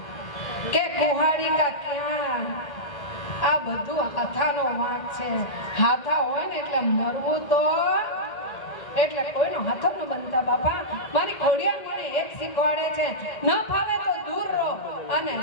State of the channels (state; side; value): late; right; 1.9 ms